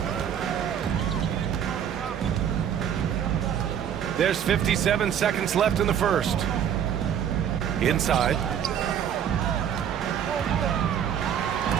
There's 57 seconds left in the first. Inside.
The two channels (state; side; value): quieter; left; 9.0 dB